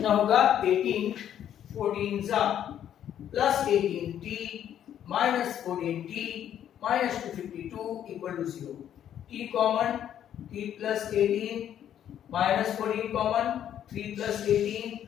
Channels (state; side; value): quieter; right; 10.2 dB